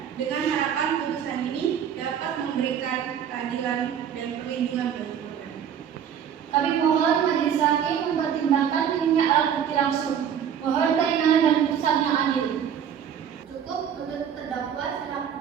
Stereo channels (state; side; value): quieter; left; 8.6 dB